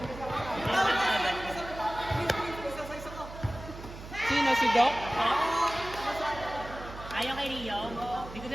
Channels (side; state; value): right; noise; hum, 13 dB below the sound